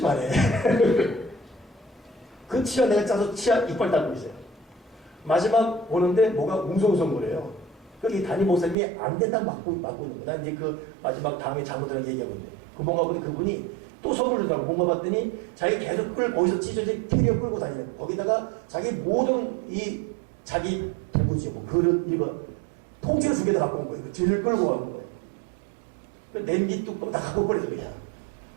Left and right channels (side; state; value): left; drops out; at 8.8 s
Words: 그 치아 내가 짜서 치아 이빨 닦고 있어요. 마지막 오는데 뭐가 웅성웅성거려요. 여기 담임 목사님이 안 된다고 막고 있는 거야. 난 이제 그 마지막 다음에 장모들랑 얘기하고 있는데 그 뭔가 보니 그분이 또 선물을 준다고 뭔가 봤더니 자기 계속 거기서 찢어진 캐리어 끌고 다니는 거. 거기다가 자기 모든 자기 대부지 뭐 그릇 이거 통째로 2개 다 갖고 온 거예요. 뒤를 끌고 가는 거예요. 그 냄비 뚜껑 다 갖고 버려서 그냥.